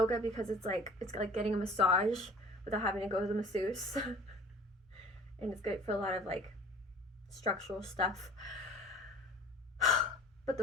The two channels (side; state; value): both; normal; correlation 0.45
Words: because it's like getting a massage without having to go to the masseuse. And it's great for a lot of like structural stuff. But